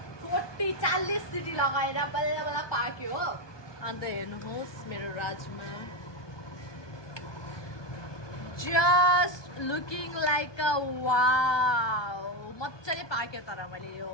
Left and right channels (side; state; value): right; late; 1.2 ms